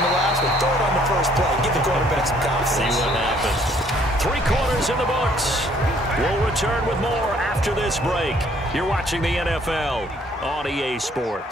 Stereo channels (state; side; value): normal; both; correlation 0.62